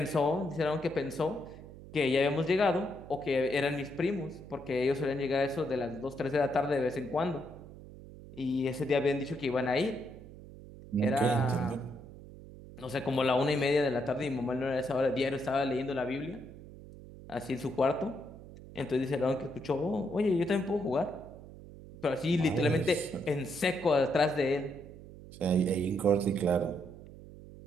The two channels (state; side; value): noise; right; hum, 16 dB below the sound